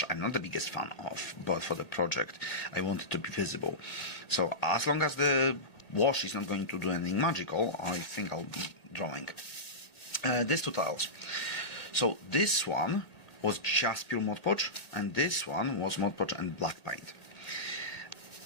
I'm not the biggest fan of, but for the project I want it to be visible. So as long as the wash is not going to do anything magical, I think I'll be drawing these 2 tiles. So this one was just pure Mod Podge, and this one was Mod Podge and black paint.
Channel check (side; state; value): right; late; 2.0 ms